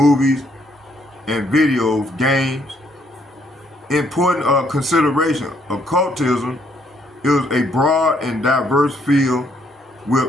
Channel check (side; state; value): both; normal; correlation 0.69